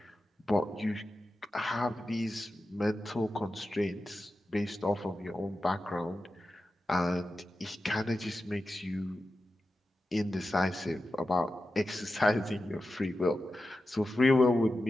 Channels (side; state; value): both; normal; correlation 0.92